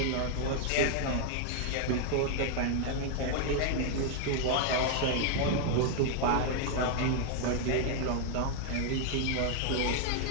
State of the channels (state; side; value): different; both; correlation 0.00